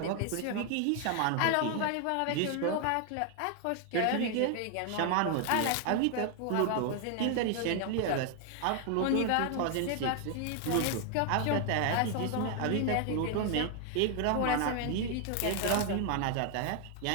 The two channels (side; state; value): both; different; correlation 0.00